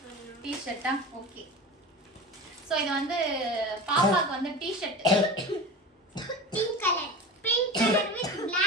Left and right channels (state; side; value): normal; both; correlation 0.31